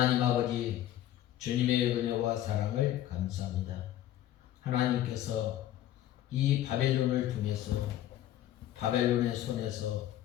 아버지, 주님의 은혜와 사랑을 감사합니다. 하나님께서 이 바벨론을 통해서 바벨론의 손에서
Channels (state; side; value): quieter; right; 12.8 dB